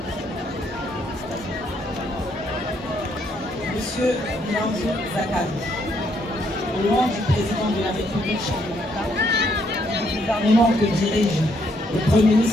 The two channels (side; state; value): both; normal; correlation 0.72